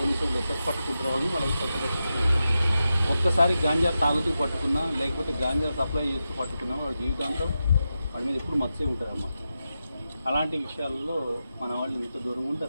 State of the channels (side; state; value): both; inverted; correlation -0.90